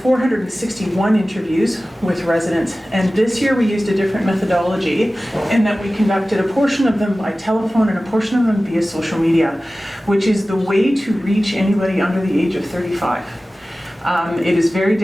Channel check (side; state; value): both; normal; correlation 0.96